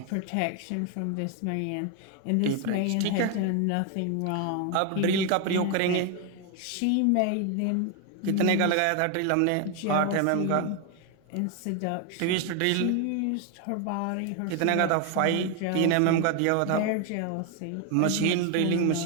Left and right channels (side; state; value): both; different; correlation 0.01